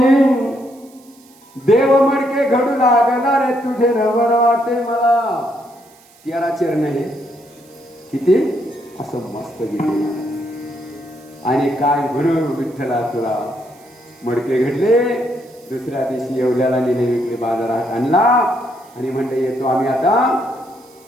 देव मडके घडू लागला रे तुझे नवल वाटे मला. 13 चरण हे किती असं मस्त गेले. आणि काय म्हणू विठ्ठला तुला मडके घडले. दुसऱ्या दिवशी येवल्याला नेले, विकले, बाजारात आणला आणि म्हणले येतो आम्ही आता.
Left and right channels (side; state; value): right; noise; hiss, 28 dB below the sound